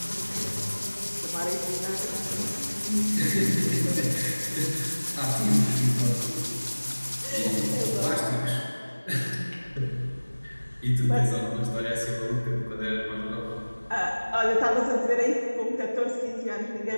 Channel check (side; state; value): both; inverted; correlation -1.00